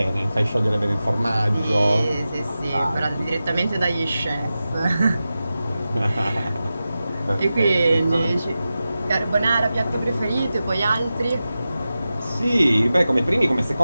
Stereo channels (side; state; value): both; inverted; correlation -0.93